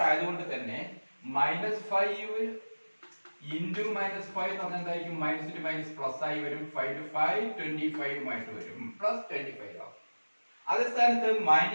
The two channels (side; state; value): both; inverted; correlation -1.00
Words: ആയതുകൊണ്ട് തന്നെ -5 ഇൻറ്റു -5 എന്ന് പറഞ്ഞാൽ എന്തായിരിക്കും? മൈനസ് ടു മൈനസ് പ്ലസ് ആയി വരും. 5 to 5 25 ആയിട്ട് വരും, പ്ലസ് 25 ആവും. അതേ സ്ഥാനത്ത്